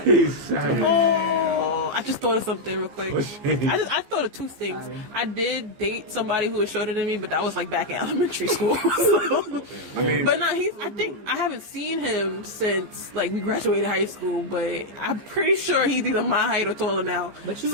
it. He's savage. Oh, I just thought of something real quick. What's it? I thought of two things. I did date somebody who was shorter than me, but that was like back in elementary school. But no, I think I haven't seen him since like we graduated high school. But I'm pretty sure he's either my height or taller now. But you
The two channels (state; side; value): late; left; 15 ms